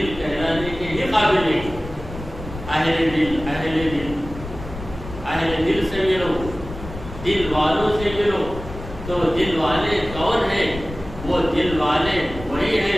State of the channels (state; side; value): noise; left; rumble, 11 dB below the sound